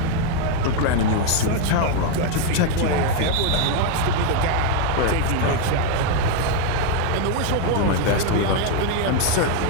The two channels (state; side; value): different; both; correlation 0.01